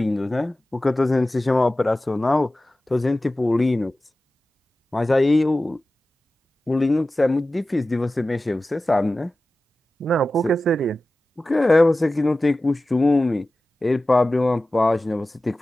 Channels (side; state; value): both; normal; correlation 0.95